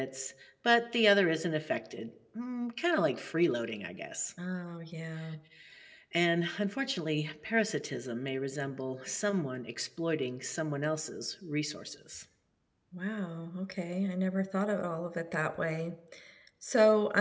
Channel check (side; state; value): both; identical; correlation 1.00